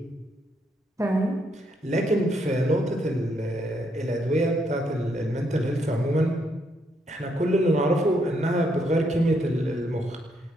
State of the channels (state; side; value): normal; both; correlation 0.75